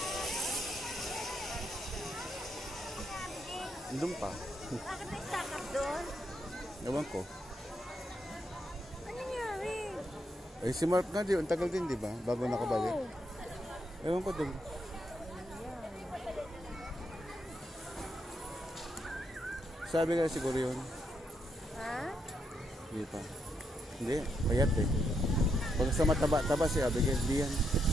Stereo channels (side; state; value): both; normal; correlation 0.79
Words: Doon pa. Bakit may stack up doon? Ewan ko. Ano nangyari? Eh si Mark nga, ang tagal din, di ba? Bago nakabalik. Ewan ko doon. Sabi nga siguro yun. Ha? Hindi pa. Hindi, payat eh. Pag sa mataba-taba si Abigail, di yan.